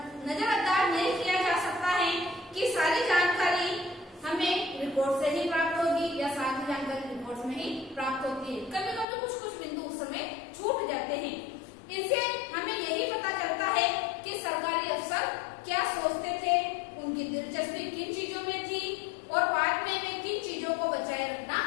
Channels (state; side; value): drops out; right; at 9.1 s